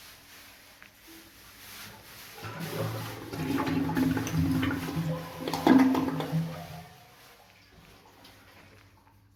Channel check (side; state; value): both; identical; correlation 1.00